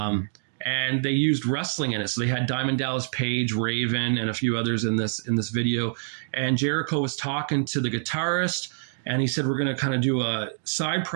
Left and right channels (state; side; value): silent; left; digital silence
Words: And they used wrestling in it. So they had Diamond Dallas Page, Raven, and a few others in this video. And Jericho was talking to the guitarist, and he said, we're going to kind of do a side